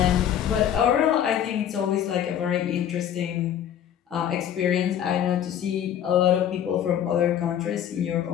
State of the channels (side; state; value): right; quieter; 9.9 dB